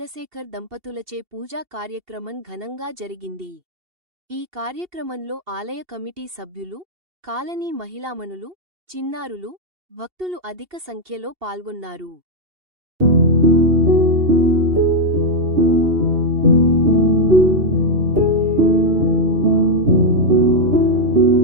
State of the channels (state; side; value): late; left; 2.7 ms